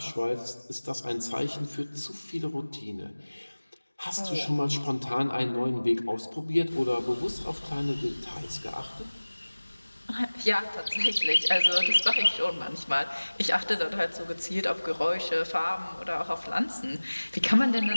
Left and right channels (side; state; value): both; inverted; correlation -1.00